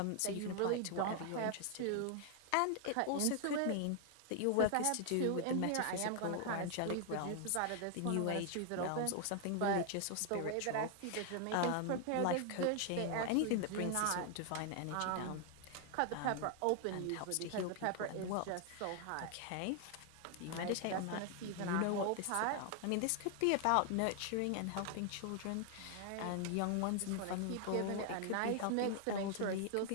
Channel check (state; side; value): different; both; correlation 0.00